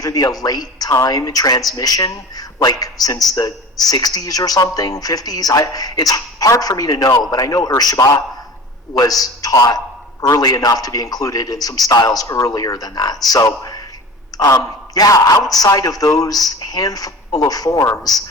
be a late time transmission, like since the 60s or something, 50s. It's hard for me to know, but I know Urshiba was taught early enough to be included in some styles earlier than that. So, outside of those handful of forms,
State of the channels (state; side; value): normal; both; correlation 0.37